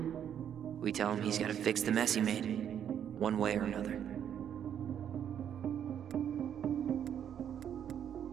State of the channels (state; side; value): quieter; left; 9.2 dB